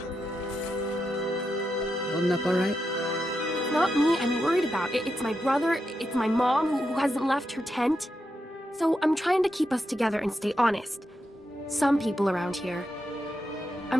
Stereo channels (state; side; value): normal; both; correlation 0.86